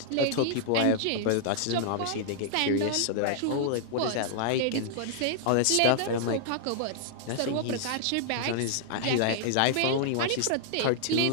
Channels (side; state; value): both; different; correlation -0.01